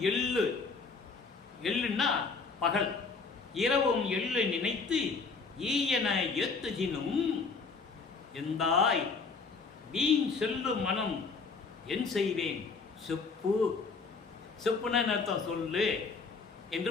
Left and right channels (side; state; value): right; quieter; 4.5 dB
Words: எள்ளு, எள்ளுன்னா பகல், இரவும் எள்ளு நினைத்து ஈயன ஏத்துஜினும் எந்தாய் வீண் செல்லு மனம் என் செய்வேன் செப்பு. செப்புன்னு அர்த்தம் சொல்லு என்று